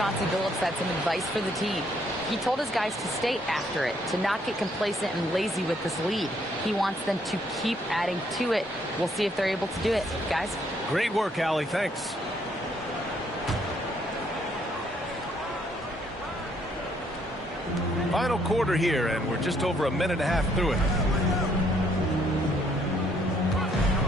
Billups had some advice for the team. He told his guys to stay after it, to not get complacent and lazy with this lead. He wants them to keep adding to it. We'll see if they're able to do it. Guys? Great work, Allie. Thanks. Final quarter here, and we're just over a minute and a half through it.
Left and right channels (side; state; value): both; normal; correlation 0.68